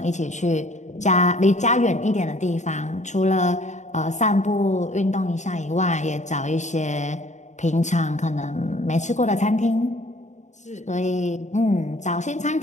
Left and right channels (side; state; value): right; late; 0.34 ms